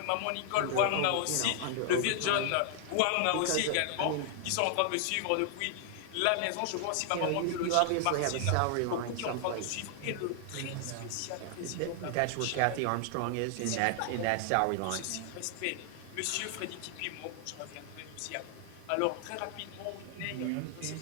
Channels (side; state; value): both; different; correlation 0.00